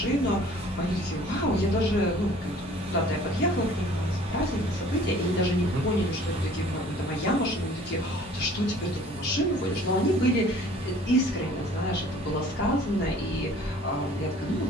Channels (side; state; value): both; normal; correlation 0.51